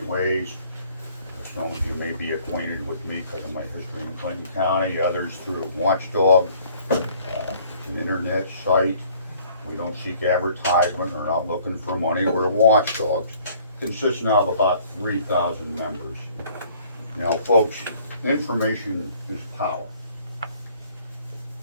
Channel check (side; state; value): both; inverted; correlation -0.57